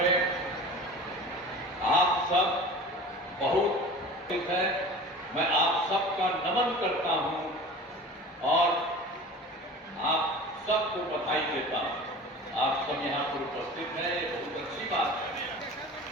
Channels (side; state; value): both; normal; correlation 0.39